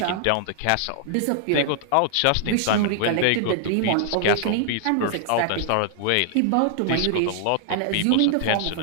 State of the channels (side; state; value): both; different; correlation -0.01